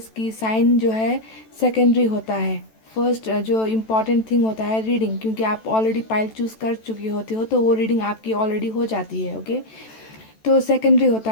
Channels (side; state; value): right; late; 14 ms